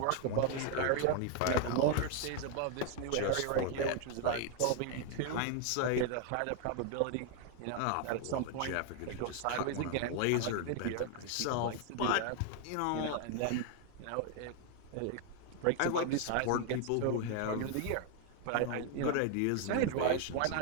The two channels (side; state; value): both; different; correlation 0.01